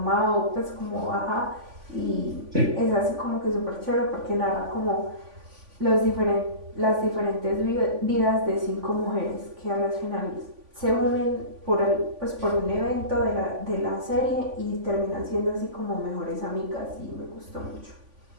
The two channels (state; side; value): late; left; 3.5 ms